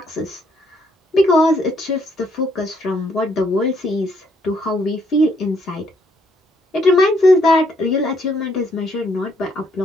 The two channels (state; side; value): normal; both; correlation 0.70